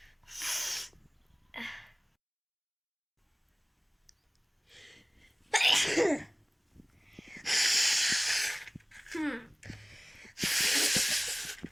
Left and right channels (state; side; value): identical; both; correlation 1.00